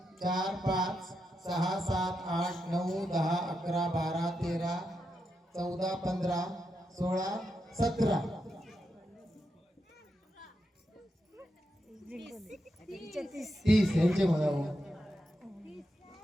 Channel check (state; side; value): normal; both; correlation 0.85